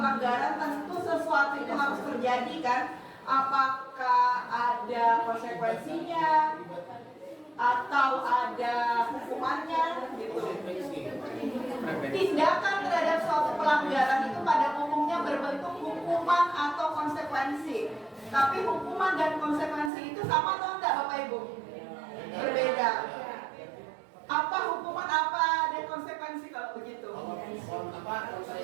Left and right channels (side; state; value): left; drops out; at 19.9 s